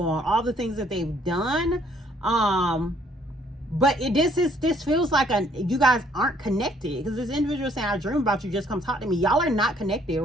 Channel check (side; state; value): both; normal; correlation 0.64